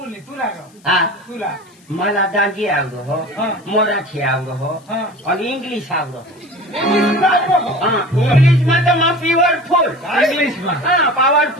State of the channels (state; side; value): noise; left; hiss, 30 dB below the sound